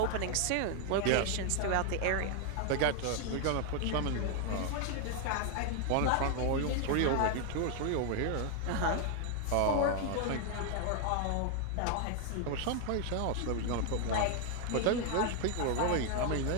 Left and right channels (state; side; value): different; both; correlation 0.00